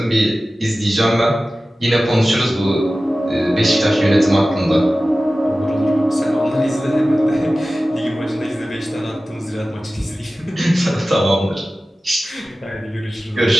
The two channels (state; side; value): normal; both; correlation 0.96